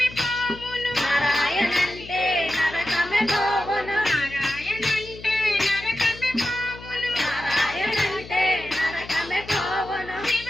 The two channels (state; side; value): noise; left; hum, 16 dB below the sound